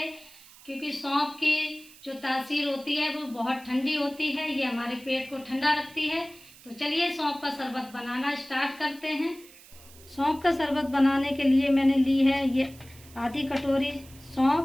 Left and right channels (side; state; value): right; noise; hiss, 22 dB below the sound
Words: क्योंकि सौंफ की जो तासीर होती है वो बहुत ठंडी होती है। ये हमारे पेट को ठंडा रखती है। तो चलिए सौंफ का शरबत बनाना स्टार्ट करते हैं। सौंफ का शरबत बनाने के लिए मैंने ली है ये आधी कटोरी